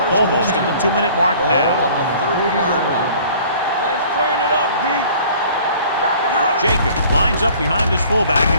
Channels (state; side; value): inverted; both; correlation -0.51